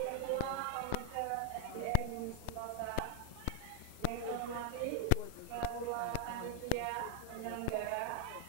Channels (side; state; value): both; different; correlation 0.00